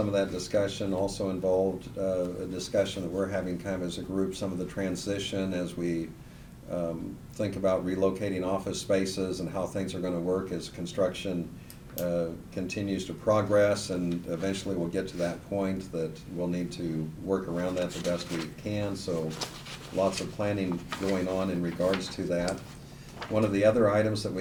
of that discussion also involved a discussion that we're having kind of as a group, some of the transition as we think about relocating office spaces and how things are going to work as construction continues to progress, and eventually we'll get to that point that we'll need to work around that the best we can. So lots of planning going on in regards to that. One of the other items that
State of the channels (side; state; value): both; identical; correlation 1.00